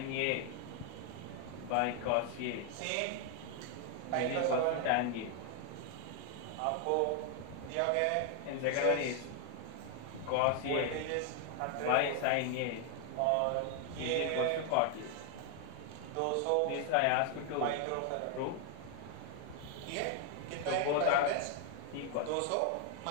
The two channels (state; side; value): different; both; correlation 0.00